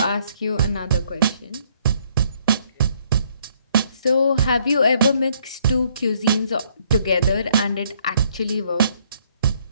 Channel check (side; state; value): both; inverted; correlation -0.67